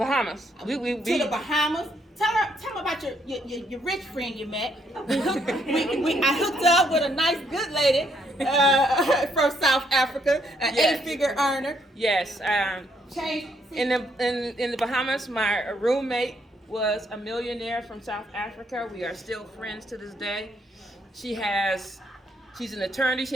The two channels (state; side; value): normal; both; correlation 0.72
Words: We to the Bahamas. Tell me about your rich friend you met. I hooked up with a nice, good lady from South Africa, an 8-figure earner. Yes. In the Bahamas, my roommate was a millionaire from South Africa. We are still friends to this day. She's an attorney.